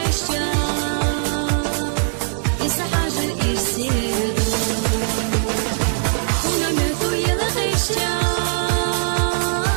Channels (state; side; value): silent; left; digital silence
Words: إسا حاجة الإرسيدو ونمتو يلا غيشتا